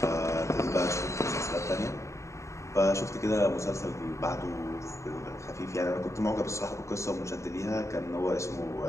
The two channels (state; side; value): late; right; 0.14 ms